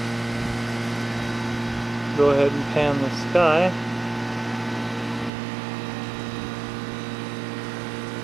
Go ahead and pan the sky.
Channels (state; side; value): drops out; left; at 5.3 s